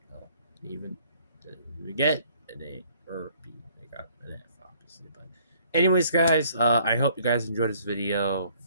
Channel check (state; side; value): inverted; both; correlation -0.60